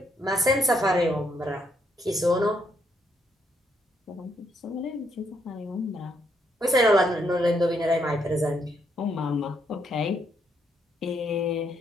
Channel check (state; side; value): normal; both; correlation 0.74